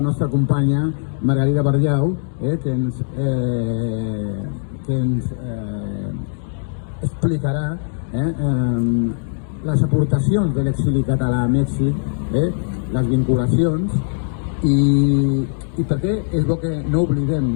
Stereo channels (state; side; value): silent; right; digital silence